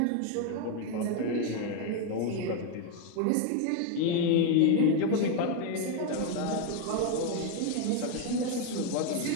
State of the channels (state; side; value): different; both; correlation 0.01